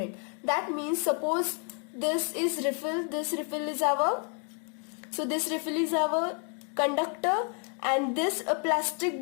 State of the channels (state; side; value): quieter; right; 39.5 dB